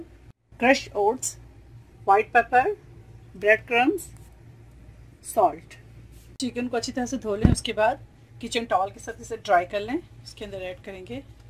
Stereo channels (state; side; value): identical; both; correlation 1.00